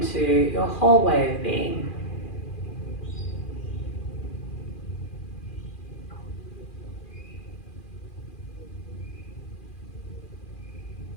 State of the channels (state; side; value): late; right; 2.4 ms